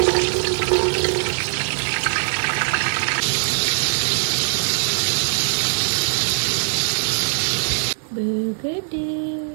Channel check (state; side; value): silent; left; digital silence